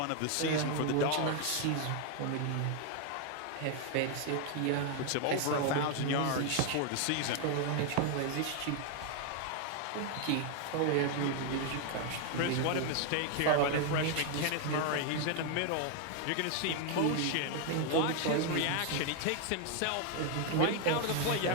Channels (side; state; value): both; different; correlation 0.00